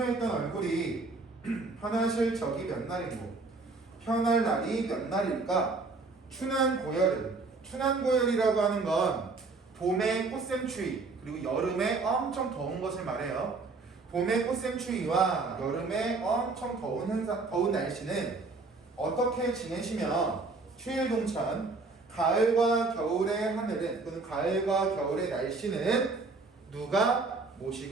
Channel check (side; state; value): left; quieter; 3.8 dB